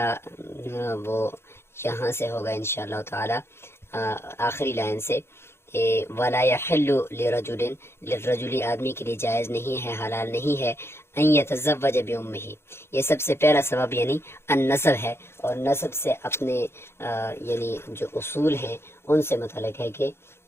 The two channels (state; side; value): late; right; 0.12 ms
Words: وہ یہاں سے ہوگا انشاءاللہ تعالی آخری لائن سے، وَلَا يَحِلُّ لِلرَّجُلِ آدمی کے لیے جائز نہیں ہے، حلال نہیں ہے ان يتزوج بأمه. یہ سب سے پہلا سبب یعنی النسب ہے، اور نسب سے اپنے یعنی جو اصول ہیں ان سے متعلق ہے کہ